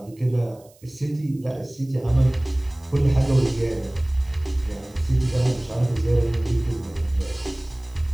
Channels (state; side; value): noise; right; hiss, 29 dB below the sound